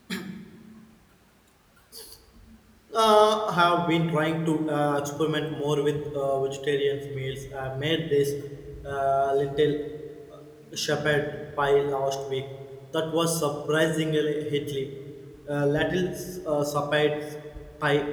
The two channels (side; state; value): both; identical; correlation 1.00